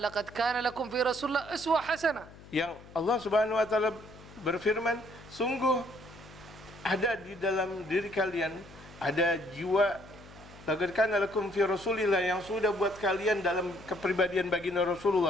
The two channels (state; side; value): noise; left; hum, 20 dB below the sound